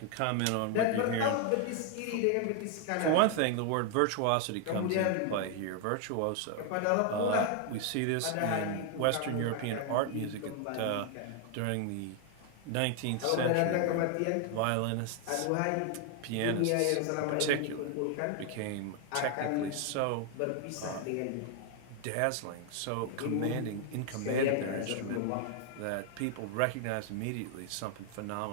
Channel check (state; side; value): different; both; correlation 0.00